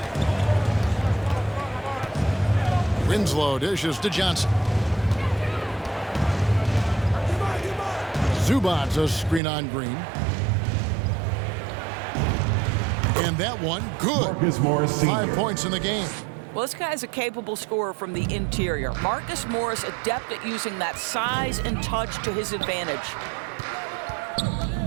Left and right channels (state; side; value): drops out; left; at 9.4 s